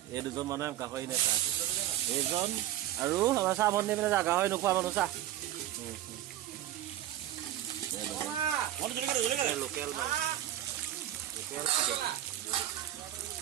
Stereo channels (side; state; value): left; quieter; 13.1 dB